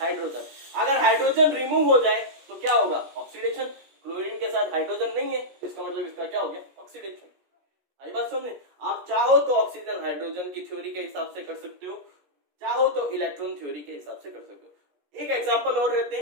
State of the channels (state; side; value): late; left; 17 ms